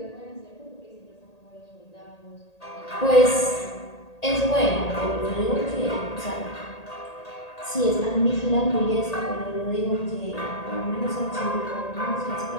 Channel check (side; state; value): right; late; 1.8 ms